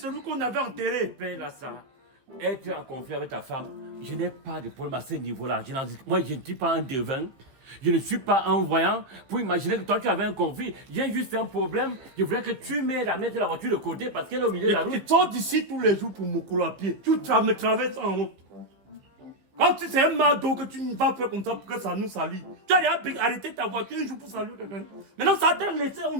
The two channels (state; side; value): late; left; 15 ms